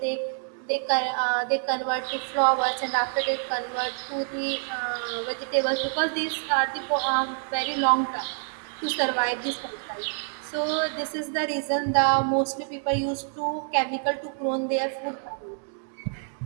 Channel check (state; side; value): silent; left; 60 dB below the other